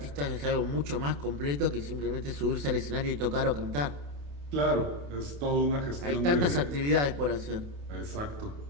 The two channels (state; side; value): late; left; 28 ms